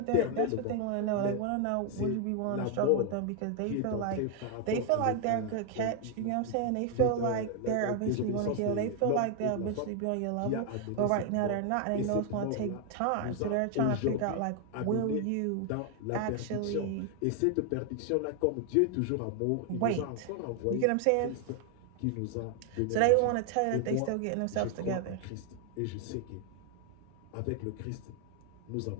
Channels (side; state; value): both; different; correlation 0.00